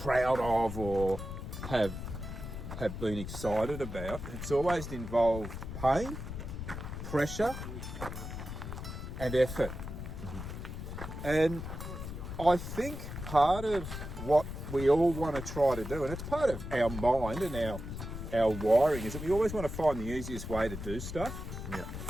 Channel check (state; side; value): noise; left; rumble, 7 dB below the sound